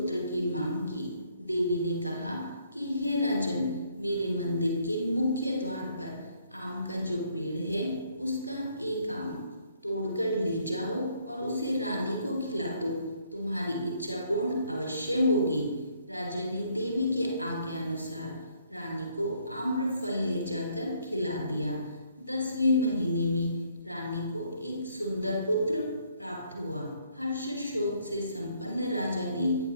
की मांग की। देवी ने कहा कि हे राजन, मेरे मंदिर के मुख्य द्वार पर आम का जो पेड़ है उसका एक आम तोड़कर ले जाओ और उसे रानी को खिला दो, तुम्हारी इच्छा पूर्ण अवश्य होगी। राजा ने देवी के आज्ञा अनुसार रानी को आम्रफल ले जाकर खिला दिया। 10वें महीने में रानी को एक सुंदर पुत्र प्राप्त हुआ। हर्ष शोक से संपन्न राजा ने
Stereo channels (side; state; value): both; inverted; correlation -0.67